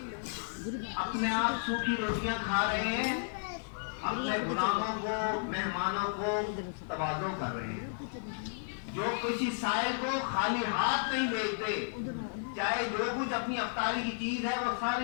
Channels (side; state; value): right; silent; 56 dB below the other